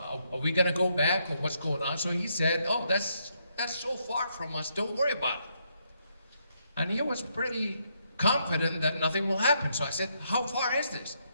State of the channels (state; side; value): inverted; both; correlation -0.76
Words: we gonna go back or what's going on? So he said, oh, that's so far from us, don't worry about it. And he was pretty confident that nothing will happen. So I said, how far is this?